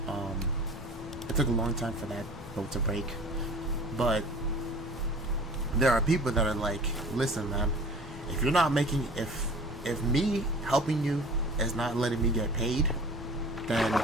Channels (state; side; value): normal; both; correlation 0.43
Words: break. But there are people that are like, listen, man, if you're not making, if me helping you is not letting me get paid, then